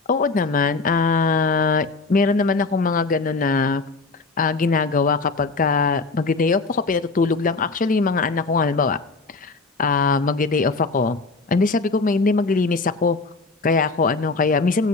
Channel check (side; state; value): right; quieter; 3.9 dB